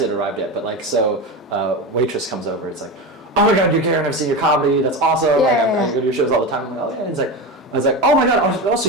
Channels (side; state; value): both; normal; correlation 0.22